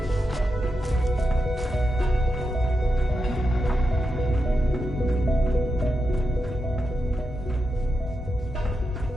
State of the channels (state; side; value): normal; both; correlation 0.87